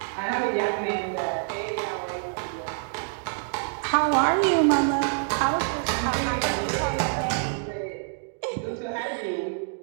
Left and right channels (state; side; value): silent; left; digital silence